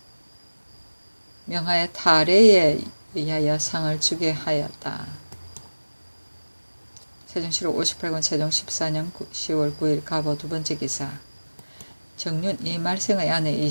명하에 탈애에 의하여 상을 주게 하였다. 세종실록 58권 세종 14년 10월 9일 가보 두번째 기사 정륜 이말생의 아내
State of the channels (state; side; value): inverted; both; correlation -1.00